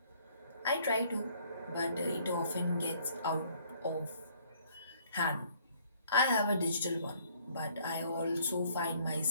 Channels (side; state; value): both; inverted; correlation -0.62